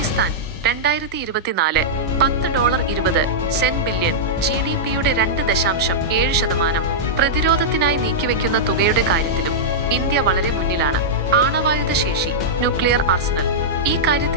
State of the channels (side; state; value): both; normal; correlation -0.09